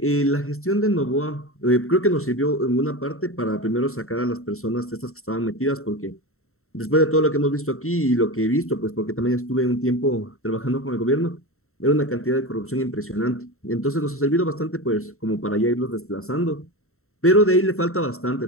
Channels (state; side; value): late; right; 0.63 ms